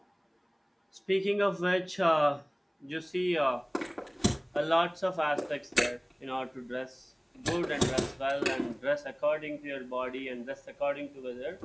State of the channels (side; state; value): both; identical; correlation 1.00